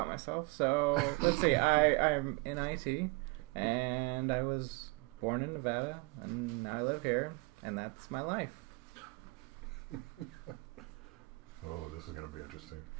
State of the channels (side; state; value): left; quieter; 24.9 dB